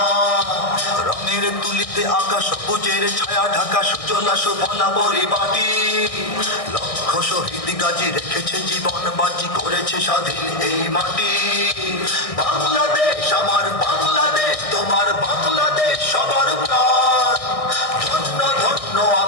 রঙের তুলিতে আকাশ সবুজের ছায়া ঢাকা সুজলা সুফলা পরিপাটি, লক্ষ শহীদ গাজী রেখেছে জীবন বাজি, করেছে স্বাধীন এই মাটি। বাংলাদেশ আমার বাংলাদেশ, তোমার বাংলাদেশ সবার প্রাণ। ধন্য ধন্য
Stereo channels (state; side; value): late; right; 1.6 ms